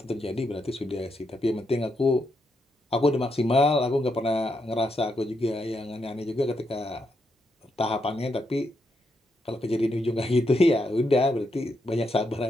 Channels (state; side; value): normal; both; correlation 0.81